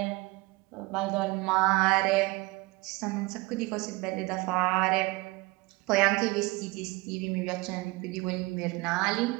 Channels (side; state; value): left; quieter; 23.4 dB